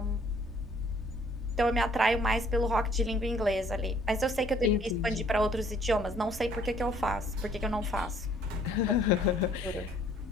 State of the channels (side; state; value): both; normal; correlation 0.60